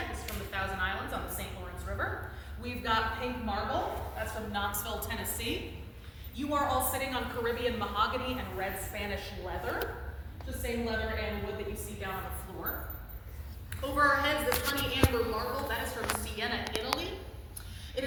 this is from the Thousand Islands on the St. Lawrence River. We've got pink marble, that's from Knoxville, Tennessee. You are all sitting on Caribbean mahogany and red Spanish leather, the same leather and wood that you see down on the floor. Over our heads, this honey amber marble, that is from Siena, Italy. It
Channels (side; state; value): both; identical; correlation 1.00